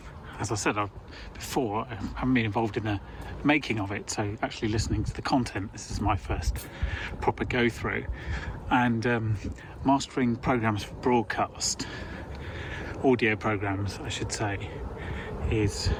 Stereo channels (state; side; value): identical; both; correlation 1.00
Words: as I said before, I haven't been involved in the making of it, so actually listening to the content, this is my first proper go through. And mastering programs for broadcast, audio programs I should say, it's